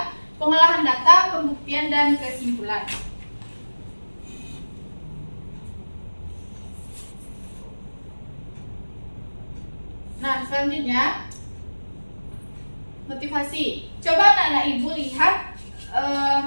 pengolahan data, pembuktian, dan kesimpulan. Nah, selanjutnya motivasi. Coba anak-anak Ibu lihat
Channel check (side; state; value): both; inverted; correlation -1.00